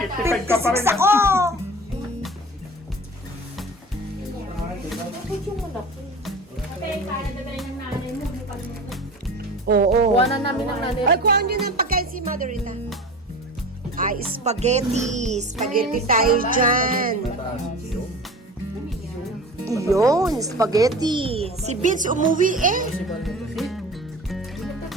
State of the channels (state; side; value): normal; both; correlation 0.36